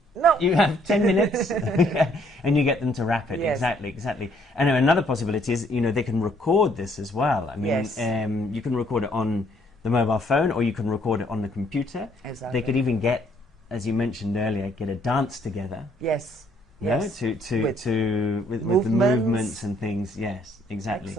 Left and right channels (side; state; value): both; normal; correlation 0.66